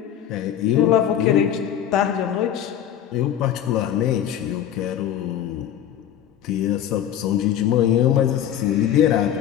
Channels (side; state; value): right; quieter; 10.3 dB